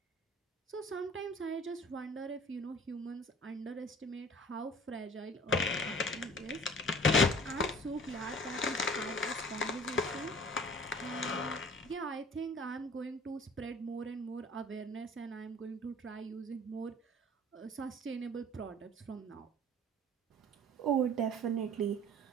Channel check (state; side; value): normal; both; correlation 0.47